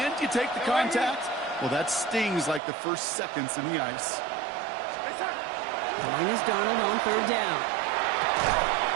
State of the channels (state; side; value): drops out; left; at 2.6 s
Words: you take the contact, well, that stings like the first seconds in the ice. Join is Darnold on 3rd down.